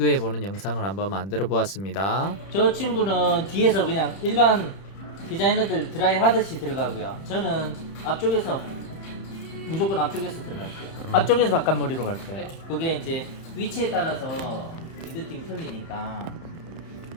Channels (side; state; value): right; late; 31 ms